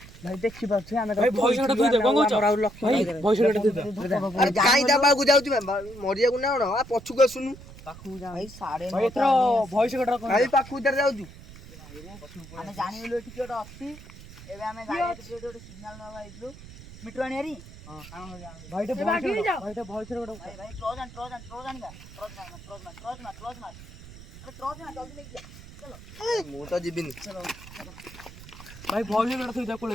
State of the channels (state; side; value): noise; right; rumble, 17 dB below the sound